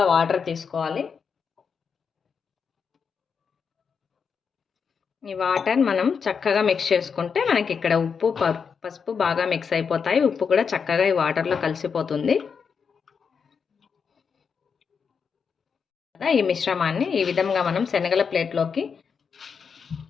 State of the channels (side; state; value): right; quieter; 6.1 dB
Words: వాటర్ తీసుకోవాలి. ఈ వాటర్ మనం చక్కగా మిక్స్ చేసుకుంటే మనకి ఇక్కడ ఉప్పు పసుపు బాగా మిక్స్ అయిపోతాయి. ఉప్పు కూడా చక్కగా ఈ వాటర్లో కలిసిపోతుంది. ఈ మిశ్రమాన్ని ఈ విధంగా మనం శనగల ప్లేట్లోకి